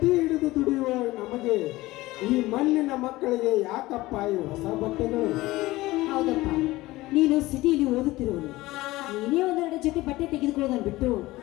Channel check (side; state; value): right; quieter; 18.7 dB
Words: ಹಿಡಿದು ದುಡಿಯುವ ನಮಗೆ ಈ ಮಣ್ಣಿನ ಮಕ್ಕಳಿಗೆ ಯಾಕಪ್ಪ ಈ ಹೊಸ ಬಟ್ಟೆಗಳು? ಹೌದಪ್ಪ, ನೀನು ಸಿಟಿಯಲ್ಲಿ ಓದುತ್ತಿರುವನು, ನೀನೇ ಒಂದೆರಡು ಜೊತೆ ಬಟ್ಟೆ ತೆಗೆದುಕೊಳ್ಳೋದನ್ನು ಬಿಟ್ಟು